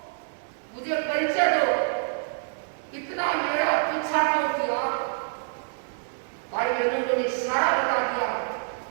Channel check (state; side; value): silent; left; digital silence